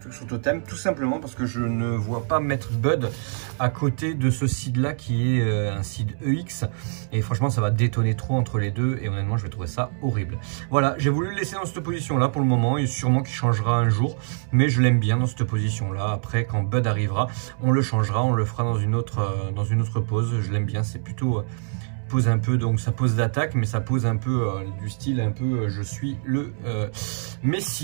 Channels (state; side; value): silent; left; 62 dB below the other